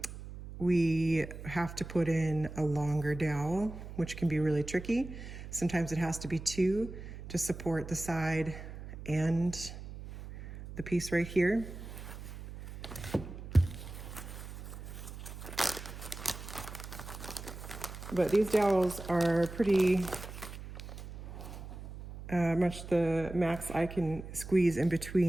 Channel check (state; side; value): noise; right; hum, 11 dB below the sound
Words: we have to put in a longer dowel, which can be really tricky. Sometimes it has to be two to support the side and the piece right here. But these dowels are pretty much the max I can squeeze in